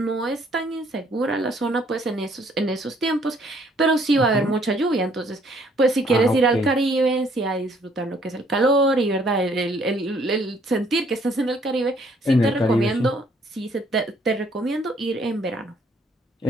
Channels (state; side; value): normal; both; correlation 0.64